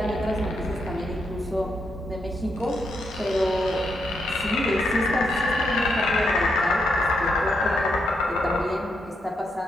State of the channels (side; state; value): both; normal; correlation 0.81